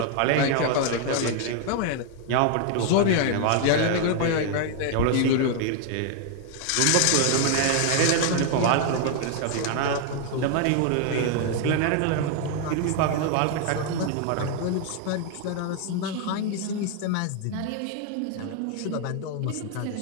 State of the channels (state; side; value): different; both; correlation 0.00